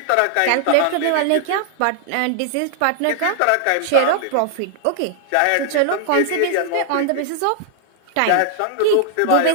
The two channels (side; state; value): both; different; correlation 0.00